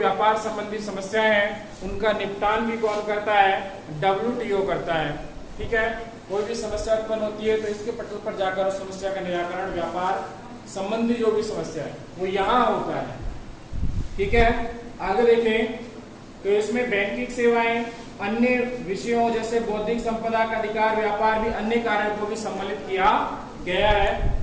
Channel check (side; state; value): both; identical; correlation 1.00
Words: संबंधी समस्याएं हैं उनका निपटान भी कौन करता है, WTO करता है, ठीक है। कोई भी समस्या उत्पन्न होती है तो इसके पटल पर जाकर उस समस्या का निराकरण, व्यापार संबंधी जो भी समस्या है वो यहाँ होता है, ठीक है। आगे देखें तो इसमें बैंकिंग सेवाएं, अन्य विषयों जैसे बौद्धिक संपदा का अधिकार, व्यापार भी अन्य कार्यों को भी सम्मिलित किया गया है।